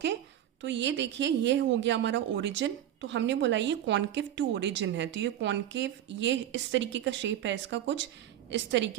तो ये देखिए ये हो गया हमारा ओरिजिन। तो हमने बोला ये कॉनकेव टू ओरिजिन है, तो ये कॉनकेव, ये इस तरीके का शेप है इसका, कुछ इस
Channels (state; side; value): quieter; left; 11.5 dB